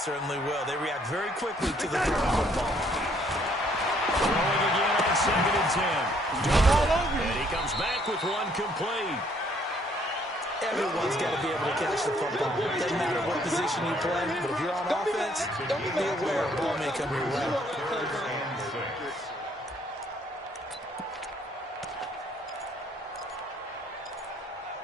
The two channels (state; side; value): normal; both; correlation 0.65